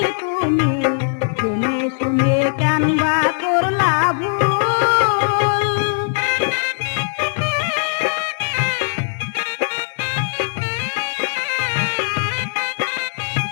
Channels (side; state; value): right; silent; digital silence